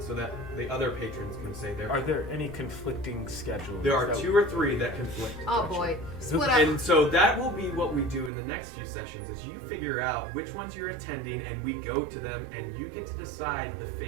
so that the other patrons can say their. are there any conflicting schedules? There are that- 2 or 3 that conflict. Oh boy. Split up. And so that will be what we do in the next few sessions is you figure out which ones you're attending and we go to them and you get to decide the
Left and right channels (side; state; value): left; drops out; at 8.3 s